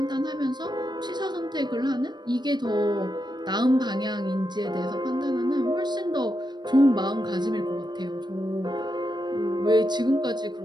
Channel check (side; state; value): left; late; 0.21 ms